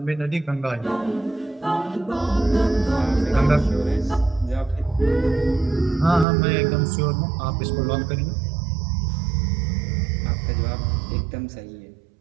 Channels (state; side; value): drops out; left; at 6.2 s